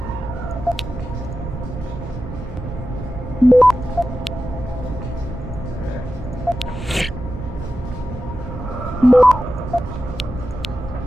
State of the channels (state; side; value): normal; both; correlation 0.92